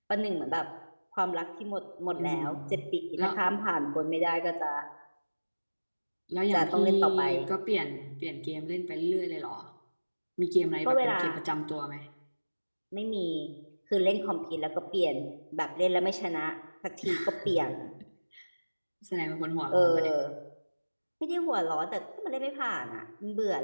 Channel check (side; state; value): both; inverted; correlation -1.00